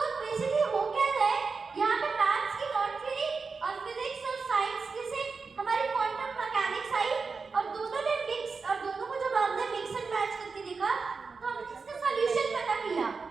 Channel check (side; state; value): left; quieter; 4.7 dB